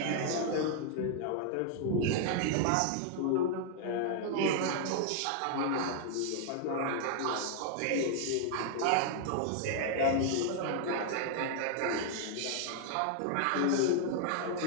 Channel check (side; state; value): both; different; correlation 0.00